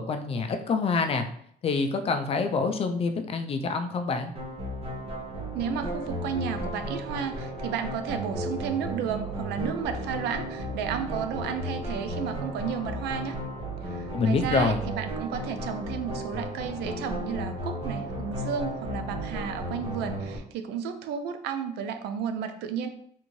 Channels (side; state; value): both; normal; correlation 0.36